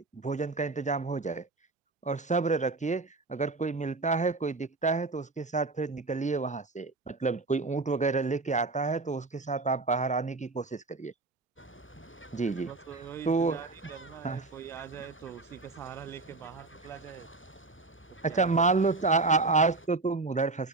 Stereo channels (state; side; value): quieter; left; 3.6 dB